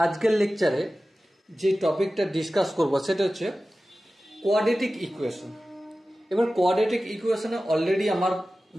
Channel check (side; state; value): both; normal; correlation 0.95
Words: লেকচারে যে টপিকটা ডিসকাস করব সেটা হচ্ছে কোয়াড্রেটিক ইকুয়েশন। এবার কোয়াড্রেটিক ইকুয়েশনে অলরেডি আমার